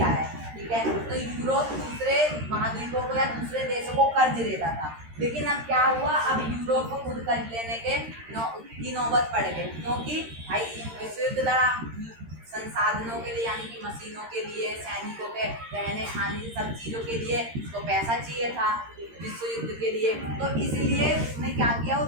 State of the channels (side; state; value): left; late; 13 ms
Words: है, ठीक है। तो यूरोप दूसरे महाद्वीपों को या दूसरे देशों को कर्ज देता था। लेकिन अब क्या हुआ? अब यूरोप को खुद कर्ज लेने की नौबत पड़ गई, क्योंकि भाई विश्व युद्ध लड़ा, संसाधनों के लिए यानी कि मशीनों के लिए, सैनिकों के रहने खाने सब चीज़ों के लिए उसको पैसा चाहिए था विश्व युद्ध के लिए। तो इसलिए उसने क्या किया? वो